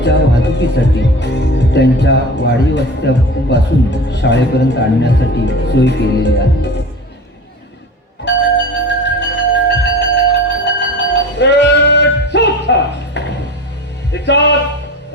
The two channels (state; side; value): normal; both; correlation 0.34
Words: वाहतुकीसाठी त्यांच्या वाडी वस्त्यापासून शाळेपर्यंत आणण्यासाठी सोय केलेली आहे.